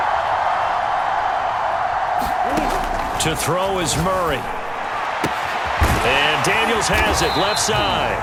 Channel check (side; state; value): both; identical; correlation 1.00